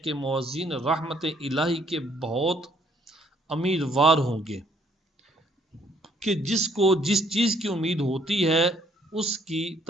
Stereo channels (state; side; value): normal; both; correlation 0.65